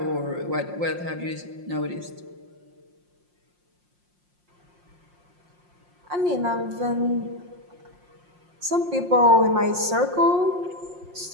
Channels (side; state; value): left; late; 5.6 ms